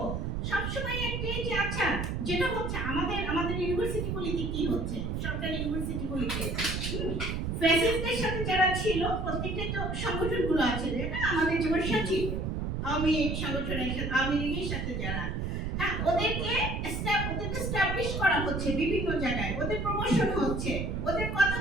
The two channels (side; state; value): right; noise; rumble, 2 dB below the sound